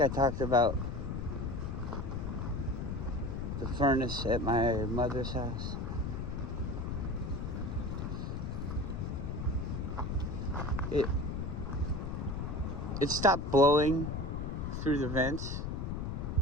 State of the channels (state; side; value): noise; left; rumble, 3 dB below the sound